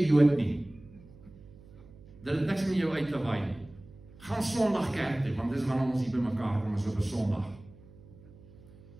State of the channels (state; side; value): noise; right; hum, 22 dB below the sound